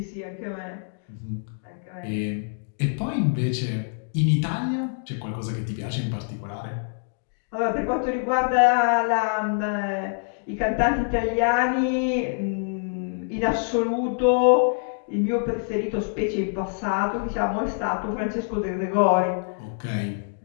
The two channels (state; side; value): silent; right; digital silence